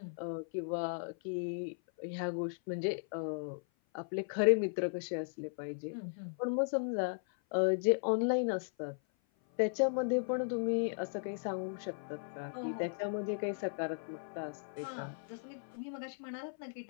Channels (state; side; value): silent; right; 53 dB below the other